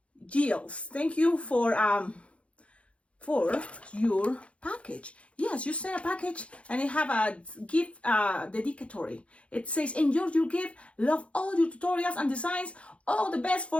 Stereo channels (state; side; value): late; right; 0.062 ms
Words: Gilles, thank you for your package. Yes, you sent a package and it have a gift dedicatory. It says, enjoy your gift, love all your tutorials and designs, all the best